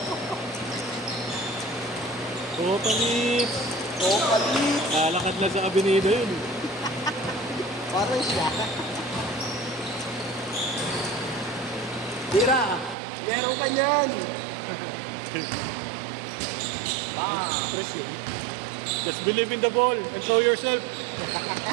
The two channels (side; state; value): left; drops out; at 13.0 s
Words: Oo, palit! Oh, palit! Lakad lang sa kabinida yun. Parang siya. Tira! Meron ka niyan! Press yun. Just believe in the ball and throw yourself.